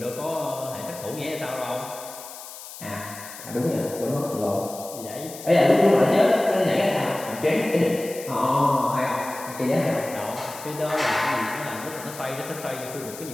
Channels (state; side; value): noise; left; hiss, 14 dB below the sound